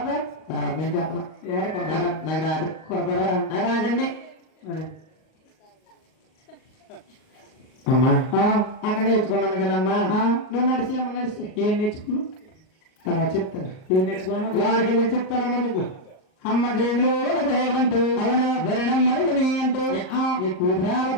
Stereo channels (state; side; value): late; right; 38 ms